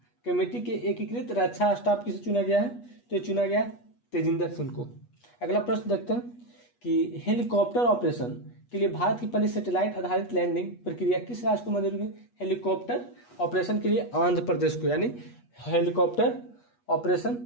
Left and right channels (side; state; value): right; late; 8.3 ms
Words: कमेटी के एकीकृत रक्षा स्टाफ किसे चुना गया है? तो चुना गया तेजिंदर सिंह को। अगला प्रश्न देखते हैं कि हेलीकॉप्टर ऑपरेशन के लिए भारत की पहली सैटेलाइट आधारित लैंडिंग प्रक्रिया किस राज्य को मंजूरी मिली? हेलीकॉप्टर ऑपरेशन के लिए आंध्र प्रदेश को, यानी हेलीकॉप्टर ऑपरेशन